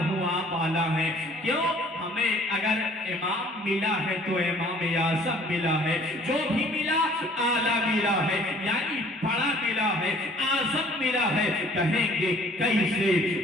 آپ آلہ ہیں. کیوں؟ ہمیں اگر امام ملا ہے تو امام اعظم ملا ہے. جو بھی ملا آلہ ملا ہے، یعنی بڑا ملا ہے، اعظم ملا ہے. کہیں گے کیسے؟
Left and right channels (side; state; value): both; normal; correlation 0.54